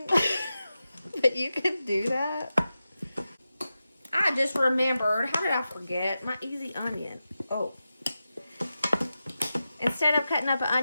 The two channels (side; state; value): both; inverted; correlation -0.92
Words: But you can do that. I just remembered, how did I forget? My easy onion. Oh. Instead of cutting up an